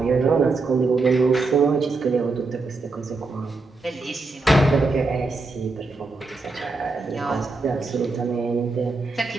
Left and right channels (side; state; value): left; quieter; 3.6 dB